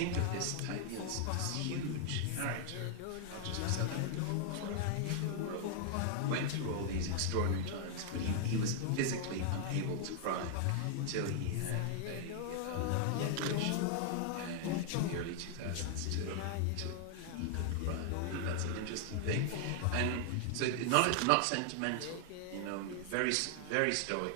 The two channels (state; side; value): different; both; correlation 0.00